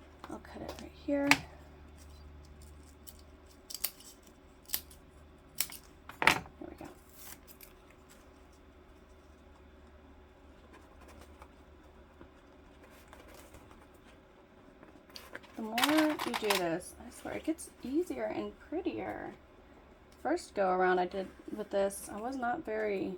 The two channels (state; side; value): identical; both; correlation 1.00